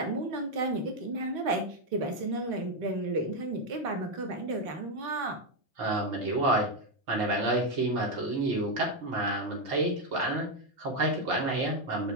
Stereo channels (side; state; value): left; late; 3.9 ms